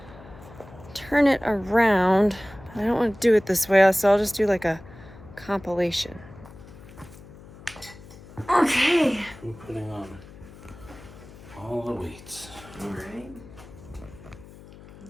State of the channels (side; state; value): left; noise; hum, 19 dB below the sound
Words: turn it around. I don't want to do it this way, so I'll just do like a compilation. Okay. I'm putting on all the weights. All right.